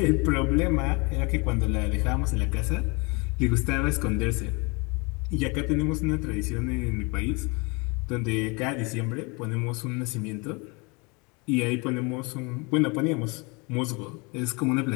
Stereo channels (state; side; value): quieter; right; 29.1 dB